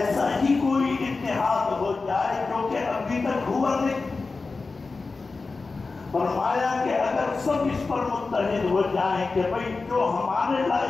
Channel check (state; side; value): quieter; right; 4.0 dB